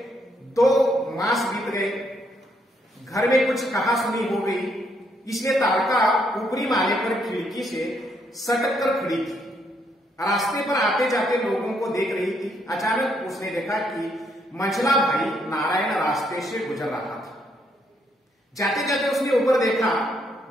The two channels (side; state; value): both; normal; correlation 0.73